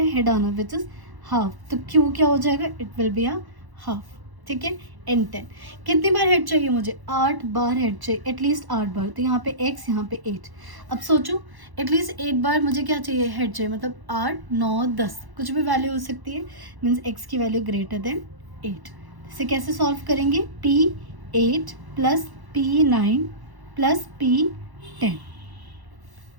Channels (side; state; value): left; late; 1.1 ms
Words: हेड आना विच इज हाफ, तो q क्या हो जाएगा it will be a half. ठीक है। n10 कितनी बार हेड चाहिए मुझे 8 बार हेड चाहिए, एटलीस्ट 8 बार, तो यहाँ पे x यहाँ पे 8। अब सोचो एटलीस्ट 8 बार मुझे क्या चाहिए हेड चाहिए, मतलब 8 9 10 कुछ भी वैल्यू हो सकती है, मीन्स x की वैल्यू ग्रेटर देन 8। इसे कैसे सॉल्व करेंगे p8 plus p9 plus p10।